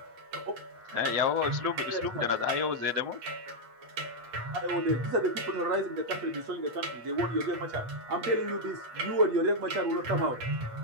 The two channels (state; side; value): late; left; 8.4 ms